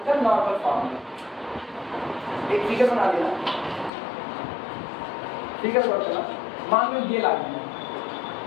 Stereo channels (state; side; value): drops out; right; at 3.9 s